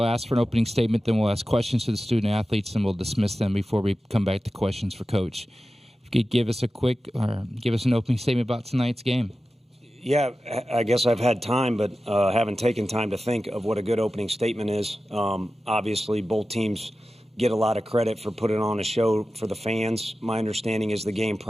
ask for an opening statement, then we'll ask questions to the student athletes, and we'll dismiss them before we come back to questions for Coach. If you could give us an opening statement about tonight's game. Yeah, I guess I've had time, but haven't taken time to think of what a good opening statement is. Obviously, both teams get a lot of credit for putting on a show for the fans. My understanding is the game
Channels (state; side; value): normal; both; correlation 0.94